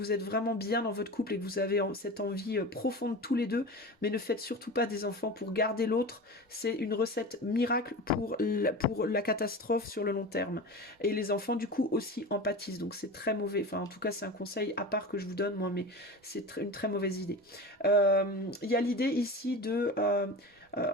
êtes vraiment bien dans votre couple et que vous avez cette envie profonde tous les deux, mais ne faites surtout pas des enfants pour garder l'autre. C'est une recette miracle pour la catastrophe sur le long terme. Et les enfants du coup aussi empathisent, donc c'est très mauvais. Enfin en tout cas c'est un conseil à part que je vous donne moi, mais c'est une très mauvaise idée. Il y a l'idée ici de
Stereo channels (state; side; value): normal; both; correlation 0.30